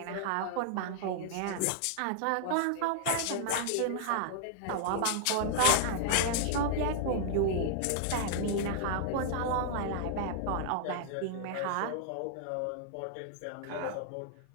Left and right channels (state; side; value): different; both; correlation -0.01